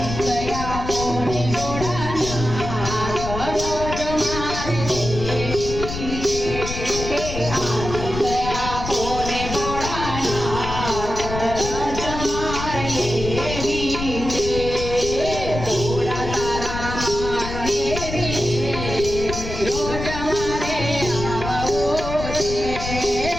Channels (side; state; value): left; noise; rumble, 7 dB below the sound